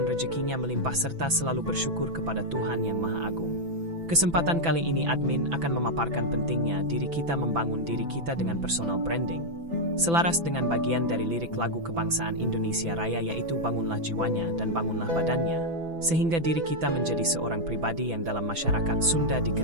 rezekinya melimpah serta selalu bersyukur kepada Tuhan Yang Maha Agung. Kesempatan kali ini admin akan memaparkan pentingnya diri kita membangun diri kita dengan personal branding. Selaras dengan bagian dari lirik lagu kebangsaan Indonesia Raya yaitu bangunlah jiwanya dan bangunlah badannya, sehingga diri kita menjadi seorang pribadi yang dalam masyarakat Sunda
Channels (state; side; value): late; left; 6.0 ms